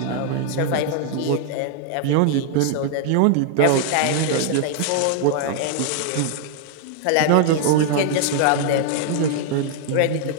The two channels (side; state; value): both; different; correlation 0.00